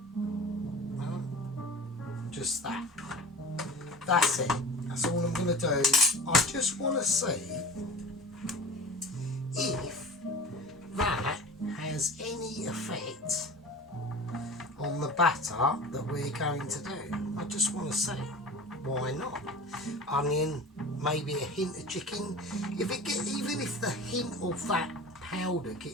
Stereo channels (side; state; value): both; normal; correlation 0.38